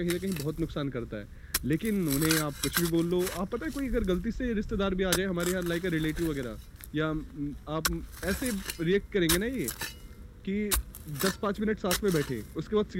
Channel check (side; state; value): both; identical; correlation 1.00